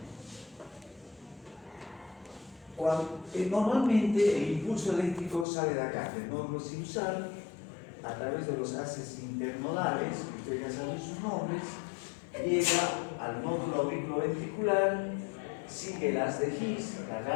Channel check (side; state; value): right; drops out; at 5.5 s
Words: Normalmente el impulso eléctrico sale de acá, del nódulo sinusal, a través de los haces internodales, que ustedes ya saben sus nombres, llega al nódulo auriculoventricular, sigue el haz de His, la